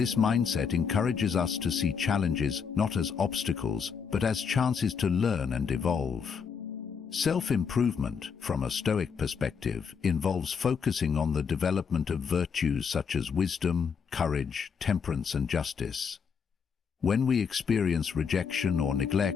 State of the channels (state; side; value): quieter; right; 6.3 dB